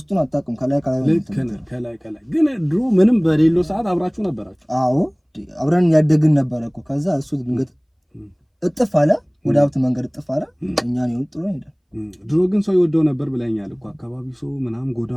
አታውቅም። ከላይ ግን ድሮ ምንም በሌለው ሰዓት አብራችሁ ነበራችሁ? አዎ አብረን ያደግን ነበረ እኮ። ከዛ እሱ ድንገት እጥፍ አለ፣ ወደ ሀብት መንገድ እጥፍ አለ። እኛን ይወጥ ጥሎ ሄደ። ድሮ ግን ሰው ይወደው ነበር ብለኛል እኮ። አካባቢ ሰው ምናምን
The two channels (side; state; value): both; identical; correlation 1.00